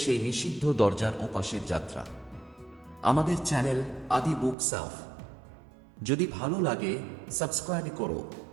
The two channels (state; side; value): drops out; left; at 4.5 s